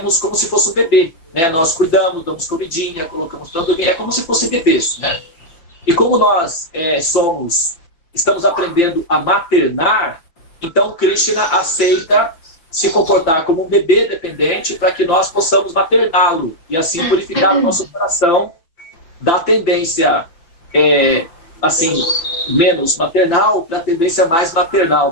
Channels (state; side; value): late; right; 5.9 ms